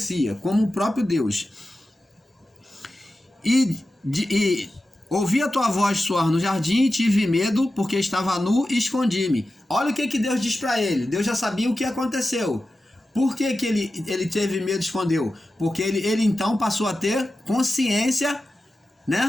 como o próprio Deus. E ouvi a tua voz soar no jardim e tive medo porque estava nu e escondi-me. Olha o que Deus diz para ele. Deus já sabia o que aconteceu. Por que ele teve medo e escondeu? Porque ele então passou a ter consciência,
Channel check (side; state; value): both; normal; correlation 0.93